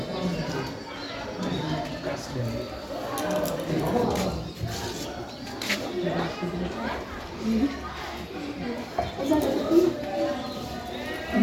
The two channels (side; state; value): both; identical; correlation 1.00